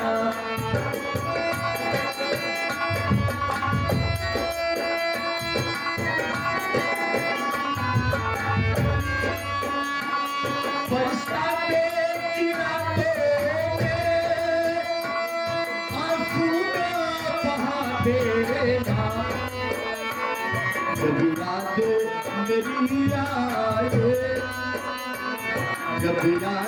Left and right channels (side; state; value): both; identical; correlation 1.00